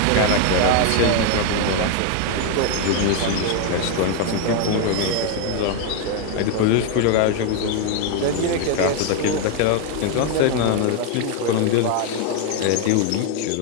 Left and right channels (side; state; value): both; different; correlation 0.01